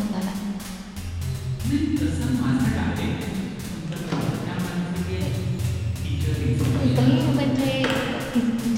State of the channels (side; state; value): both; identical; correlation 1.00